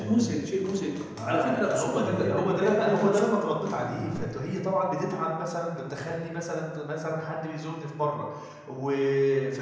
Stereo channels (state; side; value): identical; both; correlation 1.00